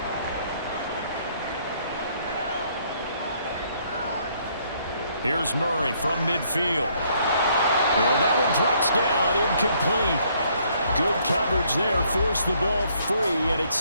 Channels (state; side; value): inverted; both; correlation -0.67